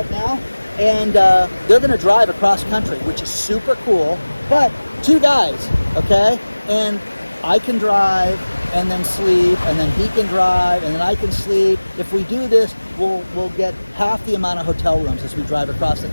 now, and they're going to drive across country, which is super cool. But 2 guys, okay? And I can drive and then sleep, and then he can drive, and then I can sleep. If we do this, we'll get half the amount of hotel rooms as we drive across the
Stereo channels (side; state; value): both; inverted; correlation -1.00